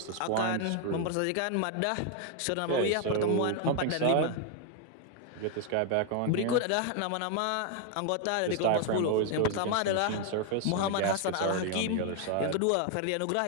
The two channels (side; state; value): both; different; correlation 0.00